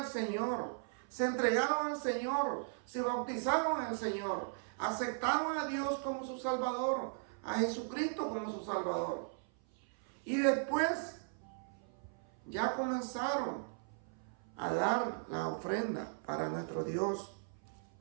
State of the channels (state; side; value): silent; left; 53 dB below the other